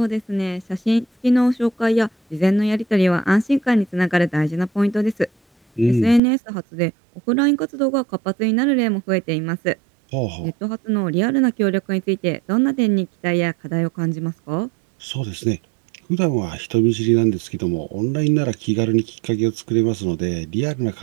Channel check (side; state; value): left; drops out; at 6.2 s